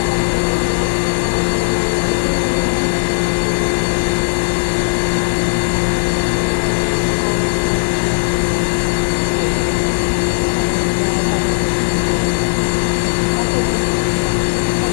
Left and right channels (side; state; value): right; silent; digital silence